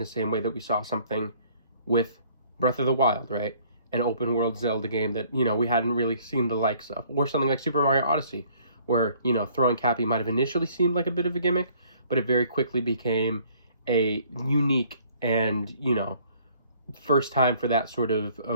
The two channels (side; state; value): both; inverted; correlation -0.60